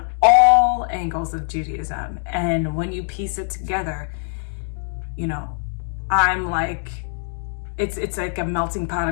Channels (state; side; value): silent; right; digital silence